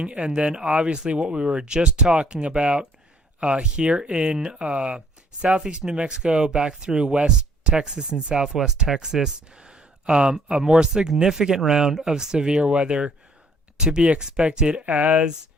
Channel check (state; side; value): normal; both; correlation 0.62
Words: And then obviously what we were just talking about here in southeast New Mexico, back through West Texas and Southwest Texas. A more significant round of severe weather to be expected as